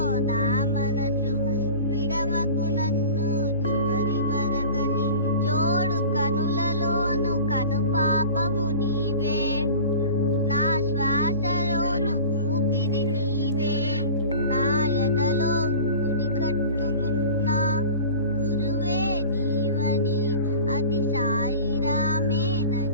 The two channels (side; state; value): both; inverted; correlation -0.39